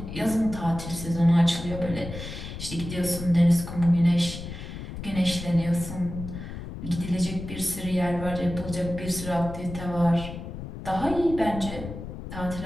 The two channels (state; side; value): noise; left; rumble, 9 dB below the sound